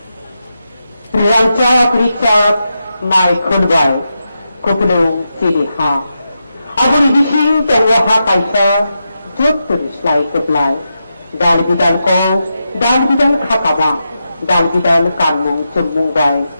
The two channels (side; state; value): both; inverted; correlation -0.87